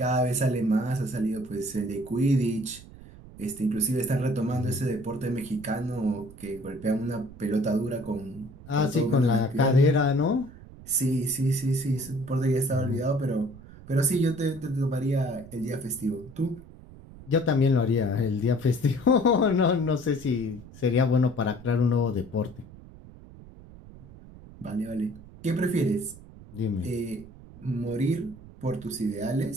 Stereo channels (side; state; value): right; noise; rumble, 19 dB below the sound